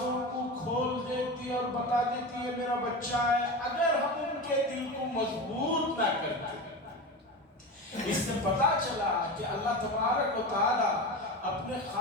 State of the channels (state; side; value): normal; both; correlation 0.25